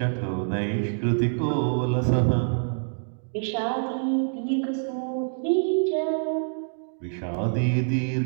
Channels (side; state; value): left; silent; digital silence